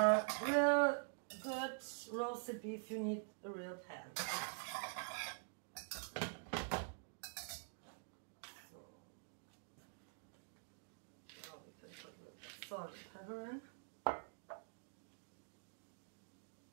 real good roasted beef you need a real pan. So now we can put a little salt and pepper in.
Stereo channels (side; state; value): left; silent; digital silence